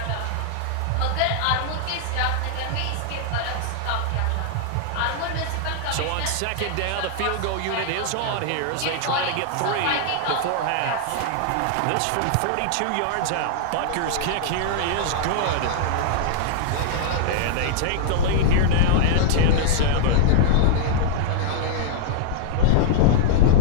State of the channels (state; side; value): different; both; correlation -0.01